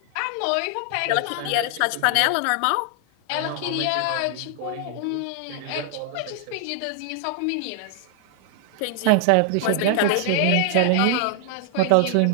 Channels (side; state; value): both; different; correlation 0.00